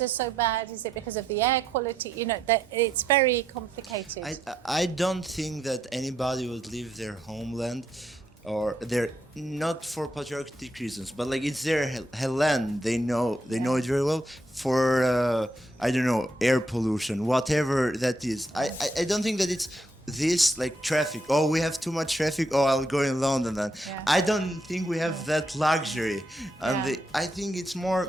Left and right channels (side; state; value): both; normal; correlation 0.78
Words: are so bad? Is it because of the air quality? You know, that it's very complicated. I don't think that anybody would leave their homeland, or they're not for patriotic reasons, but like it's their land. They know it very well. For I don't know, air pollution, whatever that is. I don't think that it's this like traffic. Oh, we have too much traffic. Oh, I'll go in London then. I don't think we have that luxury, and I think it's